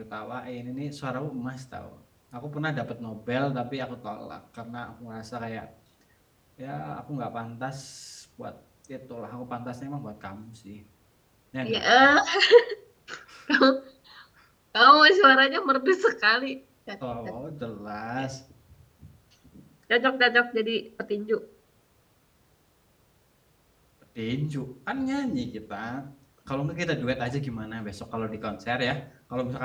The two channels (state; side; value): identical; both; correlation 1.00